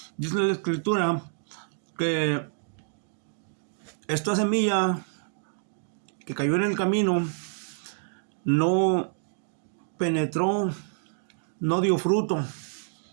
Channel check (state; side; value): silent; left; digital silence